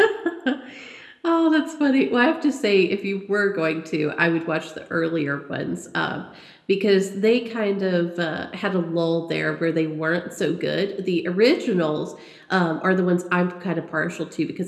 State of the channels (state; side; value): identical; both; correlation 1.00